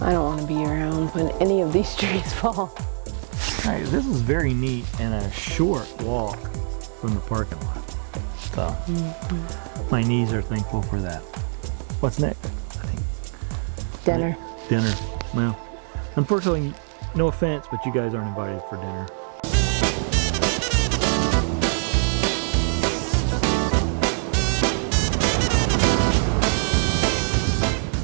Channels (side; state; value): left; silent; digital silence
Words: I don't want to be around when any of these trees fall. Alright, this is very neat and a short walk from the parking lot. So, my knees are thankful for that. What's next? I think Dinner. dinner. Well, unfortunately, no offense, but you guys aren't invited for dinner.